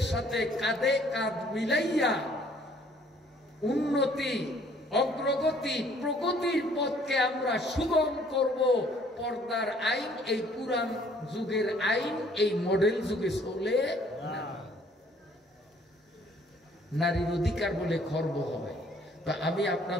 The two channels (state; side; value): normal; both; correlation 0.60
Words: সাথে কাঁধে কাঁধ মিলাইয়া উন্নতি, অগ্রগতি, প্রগতির পথকে আমরা সুগম করব। পর্দার আইন এই পুরান যুগের আইন এই মডেল যুগে চলে না। নারীর অধিকার বলে খর্ব হয়, তা আমি